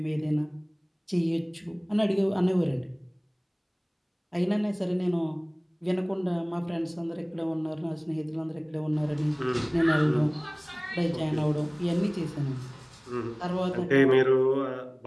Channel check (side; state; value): both; identical; correlation 1.00